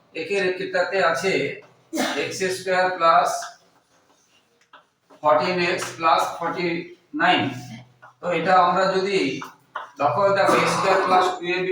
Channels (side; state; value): both; identical; correlation 1.00